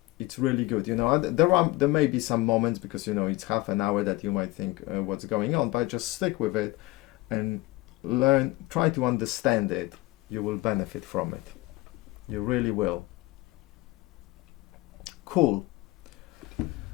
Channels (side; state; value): right; quieter; 20.0 dB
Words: It's really good, you know. There may be some moments, because you know it's half an hour, that you might think what's going on, but just stick with it and learn, try to understand it. You will benefit from it. You really will. Cool.